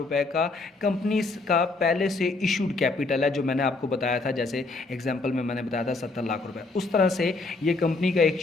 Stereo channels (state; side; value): quieter; right; 3.5 dB